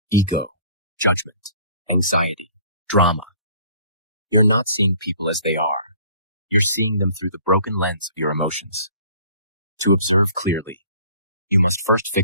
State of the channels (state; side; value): inverted; both; correlation -0.54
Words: ego, judgment, anxiety, drama. You're not seeing people as they are. You're seeing them through the broken lens of your emotions. To observe clearly, you must first